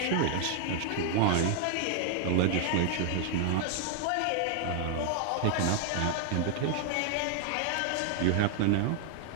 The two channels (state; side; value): different; both; correlation 0.00